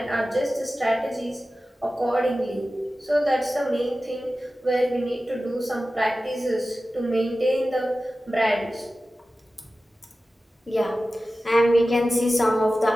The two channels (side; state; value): both; normal; correlation 0.95